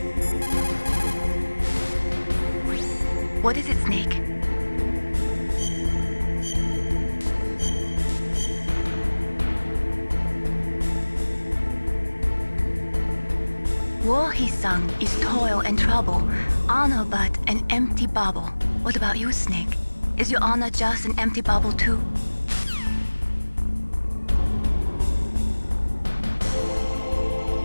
What is it, Snake? War, he sung, is toil and trouble, honor but an empty bauble. What about you, Snake? Is your honor just an empty bauble too?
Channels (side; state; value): both; inverted; correlation -1.00